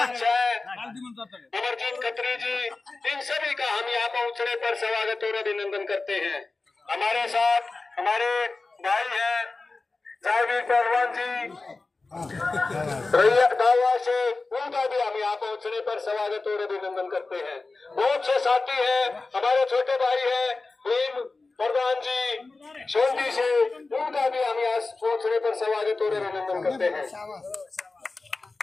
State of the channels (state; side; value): quieter; right; 3.7 dB